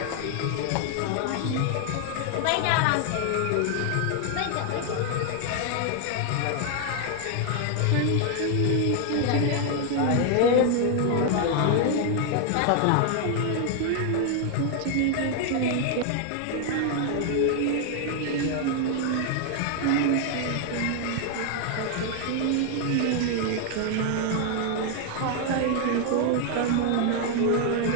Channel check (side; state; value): both; different; correlation 0.00